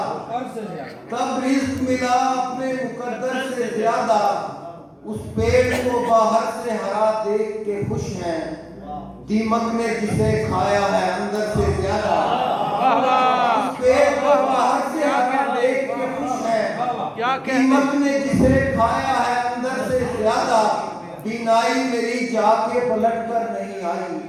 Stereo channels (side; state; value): both; identical; correlation 1.00